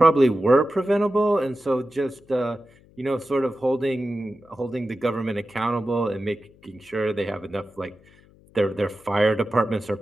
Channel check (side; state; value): left; noise; hum, 28 dB below the sound